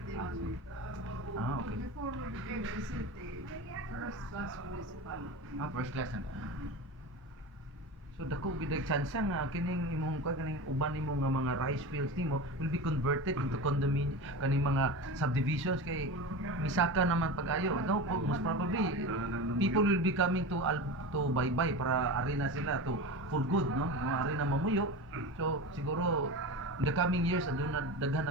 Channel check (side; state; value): both; normal; correlation 0.27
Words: man. Okay. Before we became a city, first class municipality. First class na. So dako gid chance nga kining imong kaning uban nimo nga mga rice fields nimo will be converted into condominium kaning mga subdivisions kay misaka naman pag-ayo. No, most probably people will be coming to Baybay para ari na sila to for good, no? Ari na mamuyo. So siguro in the coming years aduna daghan